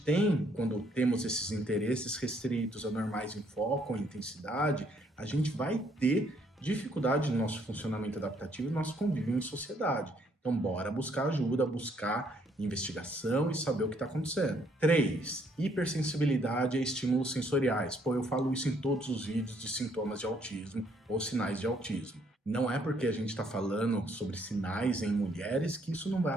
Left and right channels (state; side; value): normal; both; correlation 0.68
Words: tem, quando temos esses interesses restritos, anormais em foco ou intensidade, a gente vai ter dificuldade no nosso funcionamento adaptativo e no nosso convívio em sociedade. Então, bora buscar ajuda, buscar investigação e saber o que está acontecendo. 3. Hipersensibilidade a estímulos sensoriais. Pô, eu falo isso em todos os vídeos de sintomas de autismo ou sinais de autismo. Não é porque a gente está falando sobre sinais em mulheres que isso não vai